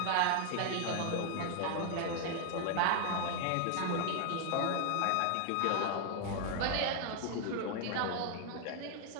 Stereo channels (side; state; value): both; different; correlation 0.00